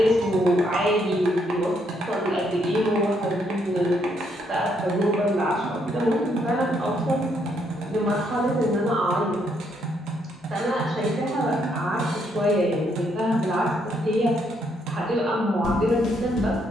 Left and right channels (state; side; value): normal; both; correlation 0.73